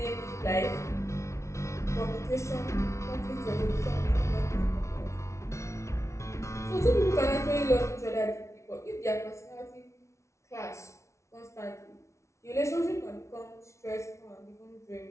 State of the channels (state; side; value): late; right; 0.14 ms